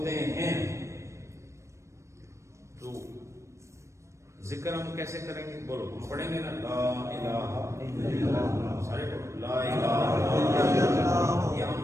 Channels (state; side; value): late; left; 0.14 ms